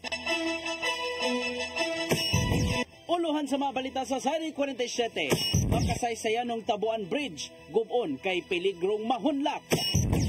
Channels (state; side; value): identical; both; correlation 1.00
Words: Uluhan sa mga balita sa Sari 47, makasaysayan ng Tabuan Bridge, gubon kay peligrong mahunlak.